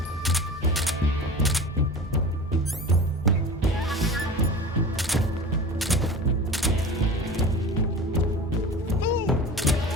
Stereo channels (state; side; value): normal; both; correlation 0.35